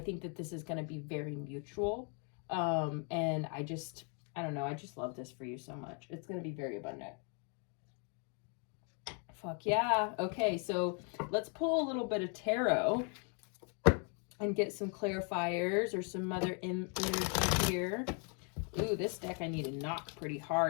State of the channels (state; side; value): quieter; right; 39.2 dB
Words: that this is going to be very mutual, and I don't know, I just love this for you so much. It's going to be very abundant. Fuck yeah. Okay, so let's pull a little bit of tarot and get some clarifiers or some other energy here. Ooh, this deck I need to knock pretty